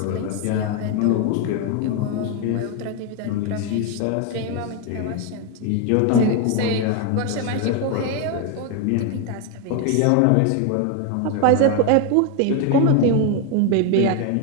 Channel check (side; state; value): both; different; correlation 0.01